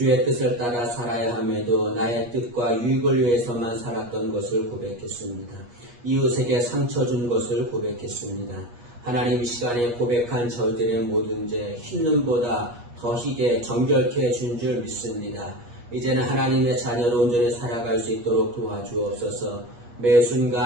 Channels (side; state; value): left; late; 8.4 ms